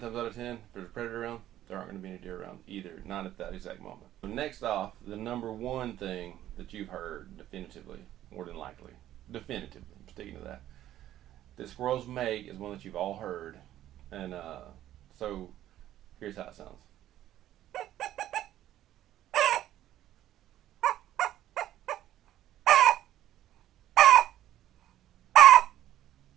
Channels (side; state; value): left; quieter; 12.9 dB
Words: out of 10, if there's a predator around, there aren't going to be any deer around either, not at that exact moment. So next off, the number 1 thing that you've heard definitively, more than likely, definitively, I'm sticking to that squirrels make is one that you've all heard. And so here's how it sounds.